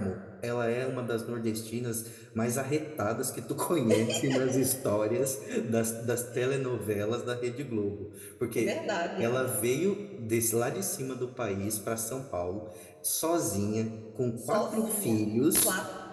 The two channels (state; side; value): identical; both; correlation 1.00